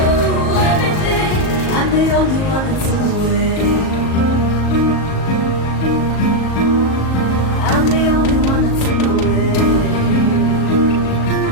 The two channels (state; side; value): late; right; 38 ms